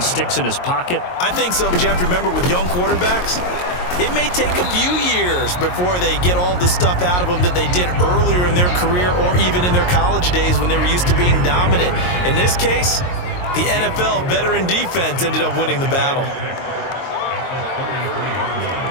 in his pocket? I think so, but you have to remember with young quarterbacks, it may take a few years before they get all the stuff out of them that they did earlier in their career or even in their college days when they were used to being dominant. In this case, the NFL veteran defense ended up winning the battle.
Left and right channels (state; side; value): late; right; 22 ms